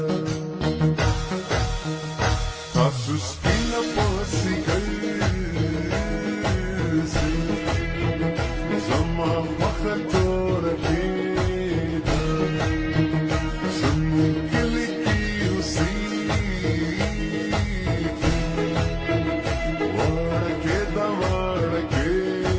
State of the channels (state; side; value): identical; both; correlation 1.00